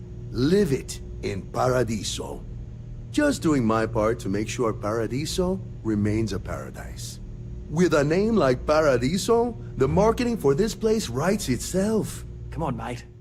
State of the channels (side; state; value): both; identical; correlation 1.00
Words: Live it in Paradiso. Just doing my part to make sure Paradiso remains a paradise. With a name like Paradiso, the marketing for this place writes itself. Come on, mate.